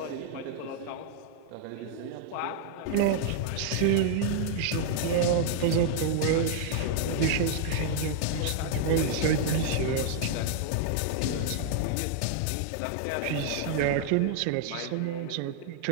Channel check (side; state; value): both; different; correlation -0.01